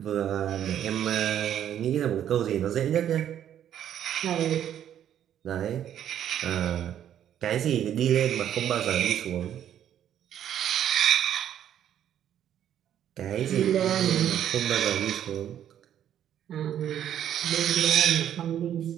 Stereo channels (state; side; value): quieter; left; 10.3 dB